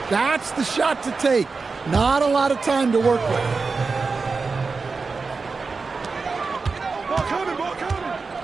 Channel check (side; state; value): left; quieter; 4.4 dB